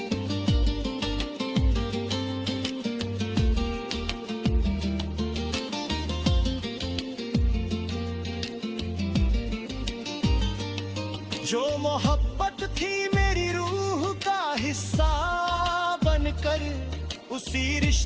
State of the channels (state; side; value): identical; both; correlation 1.00